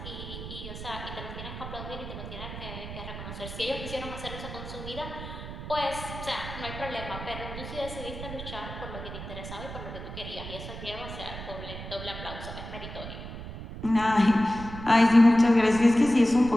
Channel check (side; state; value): right; noise; rumble, 10 dB below the sound